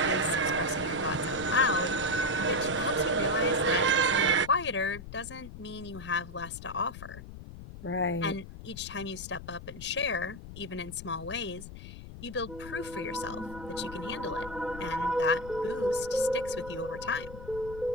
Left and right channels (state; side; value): noise; left; rumble, 13 dB below the sound